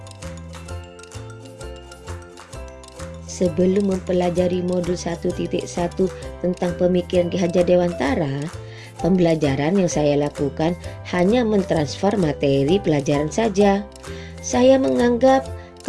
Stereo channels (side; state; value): both; identical; correlation 1.00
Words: Sebelum mempelajari modul 1.1 tentang pemikiran Ki Hajar Dewantara, pembelajaran yang saya lakukan hanya mentransfer materi pelajaran saja. Saya menganggap